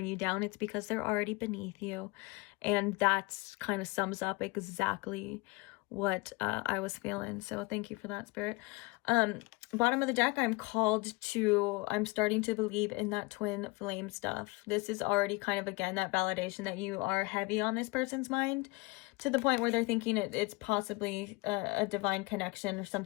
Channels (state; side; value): quieter; right; 24.4 dB